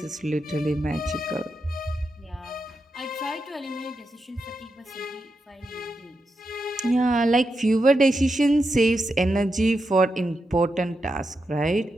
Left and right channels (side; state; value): both; normal; correlation 0.86